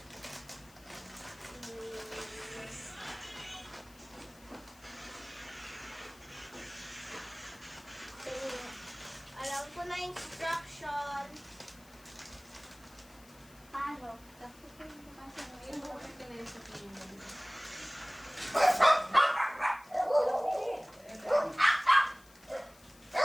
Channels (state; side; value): noise; left; hiss, 24 dB below the sound